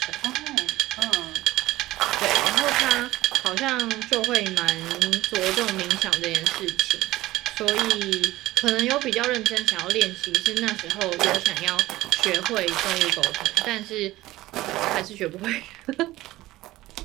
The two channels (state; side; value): quieter; left; 17.1 dB